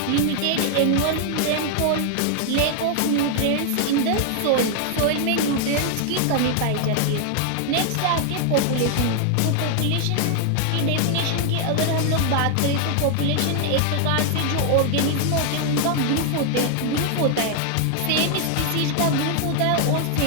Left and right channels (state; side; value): different; both; correlation 0.00